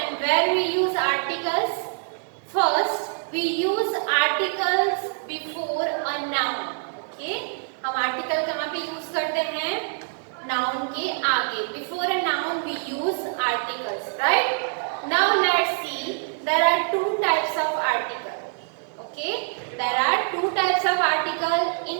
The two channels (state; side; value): silent; left; 62 dB below the other